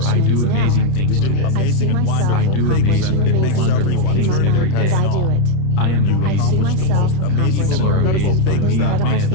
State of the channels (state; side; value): late; right; 30 ms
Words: I do amazing things today. I do amazing and wonderful things every day. I am amazing. People are amazed by me and my